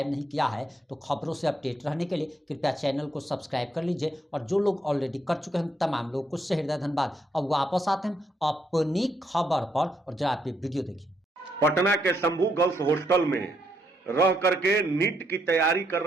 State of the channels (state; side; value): normal; both; correlation 0.76